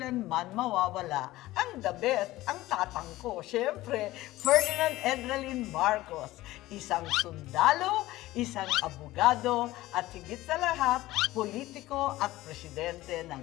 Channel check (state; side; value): quieter; right; 17.1 dB